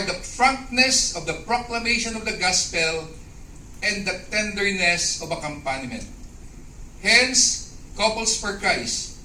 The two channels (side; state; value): both; identical; correlation 1.00